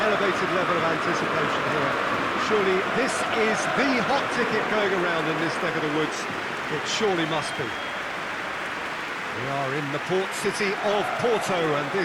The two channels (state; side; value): identical; both; correlation 1.00